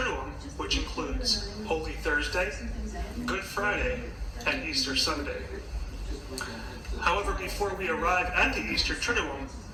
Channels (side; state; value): both; identical; correlation 1.00